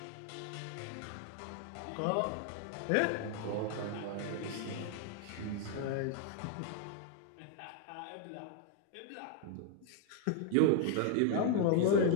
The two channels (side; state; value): both; different; correlation 0.00